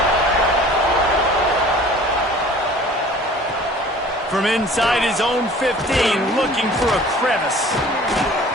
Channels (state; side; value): normal; both; correlation 0.47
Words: From inside his own 15, looking for a crevice.